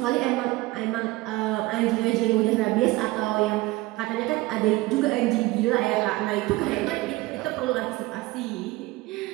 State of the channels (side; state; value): left; quieter; 20.1 dB